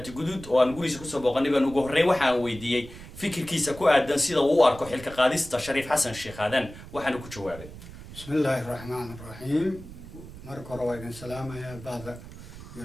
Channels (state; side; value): noise; right; rumble, 15 dB below the sound